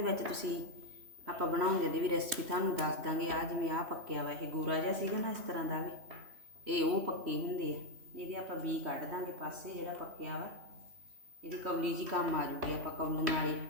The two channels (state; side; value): late; left; 3.1 ms